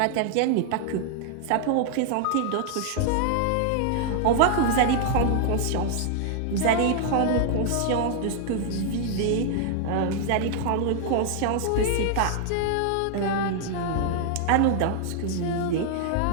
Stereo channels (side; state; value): both; different; correlation 0.00